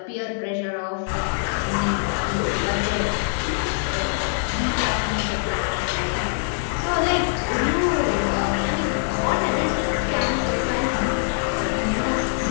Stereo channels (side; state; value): right; silent; 63 dB below the other